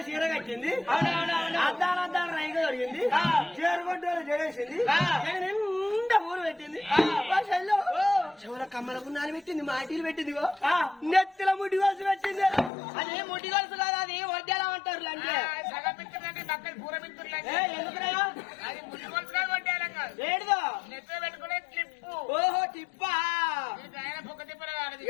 చీర కట్టింది అద్దాలు రైగా దొరికింది చీరగొడ్డోలు జడేసింది నిండా ఊరు పెట్టింది చెవుల కమ్మలకు నాలు పెట్టింది మాటీలు పెట్టింది నెత్తిల ముడి గొలుసు పెట్టింది అది ముడి గొలుసు కాదు అది వడ్డేలా అంటారు అంటే ఏడుదో ఓహో టిప్పా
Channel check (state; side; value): drops out; right; at 12.7 s